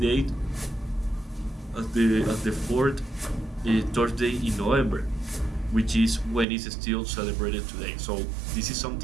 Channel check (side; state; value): left; drops out; at 6.5 s